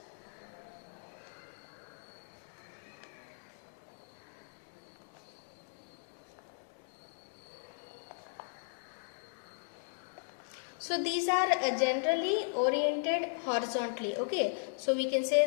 So these are generally oriented horizontally. Okay, so we can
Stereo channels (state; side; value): silent; right; digital silence